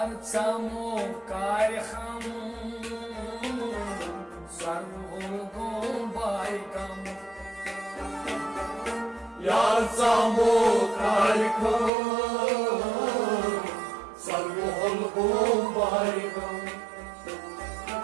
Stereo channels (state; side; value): drops out; left; at 11.9 s